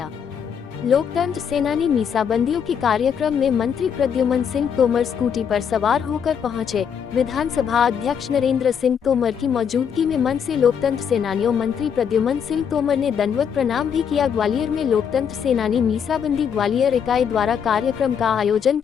लोकतंत्र सेनानी मीसाबंदियों के कार्यक्रम में मंत्री प्रद्युमन सिंह तोमर स्कूटी पर सवार होकर पहुंचे। विधानसभा अध्यक्ष नरेंद्र सिंह तोमर की मौजूदगी में मंच से लोकतंत्र सेनानियों मंत्री प्रद्युमन सिंह तोमर ने दंडवत प्रणाम भी किया। ग्वालियर में लोकतंत्र सेनानी मीसाबंदी ग्वालियर इकाई द्वारा कार्यक्रम का आयोजन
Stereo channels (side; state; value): right; quieter; 7.5 dB